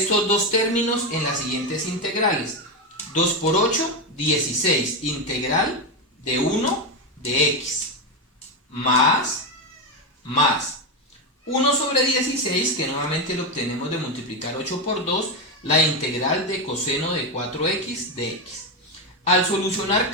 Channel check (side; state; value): both; normal; correlation 0.10